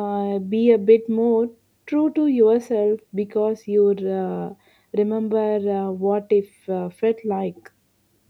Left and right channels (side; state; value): both; identical; correlation 1.00